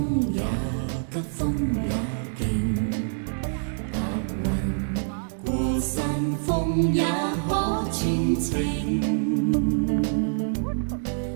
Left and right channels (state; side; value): silent; left; digital silence